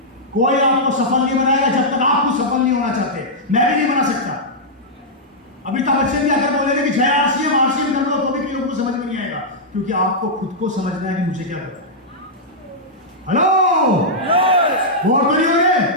कोई आपको सफल नहीं बनाएगा जब तक आप खुद सफल नहीं होना चाहते। मैं भी नहीं बना सकता। अमिताभ बच्चन भी अगर बोलेंगे कि जय आरसीएम कर दो, तो भी लोगों को समझ में नहीं आएगा, क्योंकि आपको खुद को समझना है कि मुझे क्या करना है। हेलो, वोट करिए,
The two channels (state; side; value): normal; both; correlation -0.09